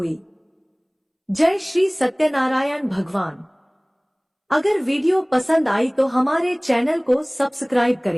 जय श्री सत्यनारायण भगवान। अगर वीडियो पसंद आई तो हमारे चैनल को सब्सक्राइब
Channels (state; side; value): identical; both; correlation 1.00